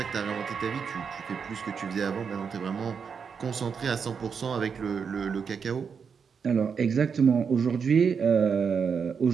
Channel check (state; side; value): quieter; left; 6.3 dB